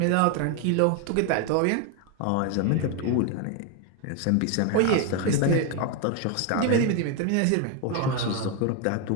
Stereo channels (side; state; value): both; different; correlation 0.01